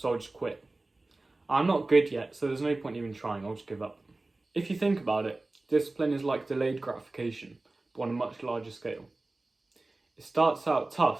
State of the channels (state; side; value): quieter; left; 3.0 dB